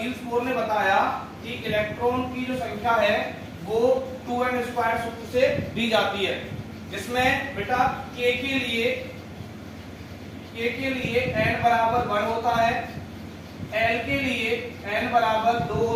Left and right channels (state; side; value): identical; both; correlation 1.00